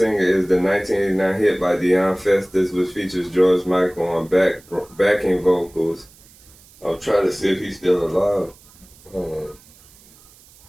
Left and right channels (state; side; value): noise; right; hiss, 26 dB below the sound